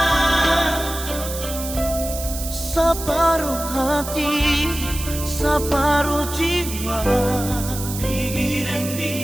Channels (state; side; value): noise; right; hiss, 8 dB below the sound